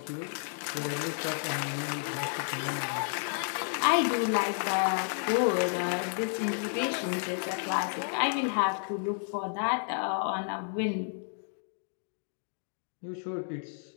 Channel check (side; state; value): right; silent; digital silence